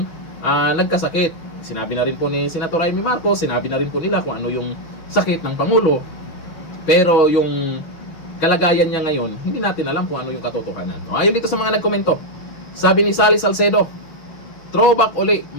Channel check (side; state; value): right; late; 6.6 ms